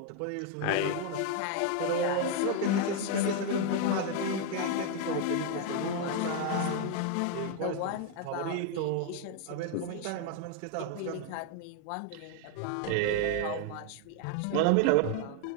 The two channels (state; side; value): different; both; correlation 0.01